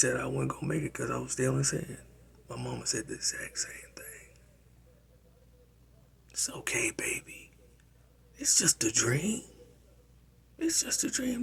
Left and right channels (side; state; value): both; identical; correlation 1.00